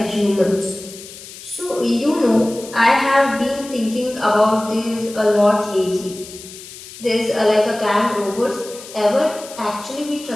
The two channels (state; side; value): noise; left; hiss, 15 dB below the sound